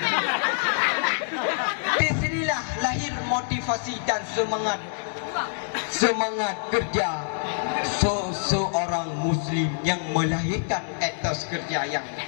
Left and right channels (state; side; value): silent; right; 61 dB below the other